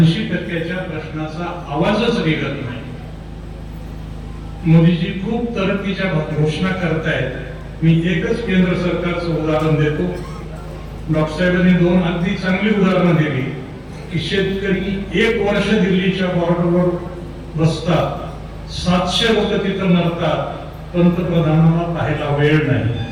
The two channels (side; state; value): both; identical; correlation 1.00